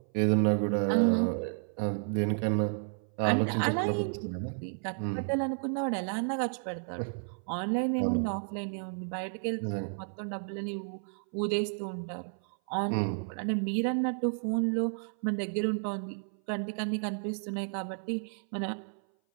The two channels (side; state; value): left; silent; 57 dB below the other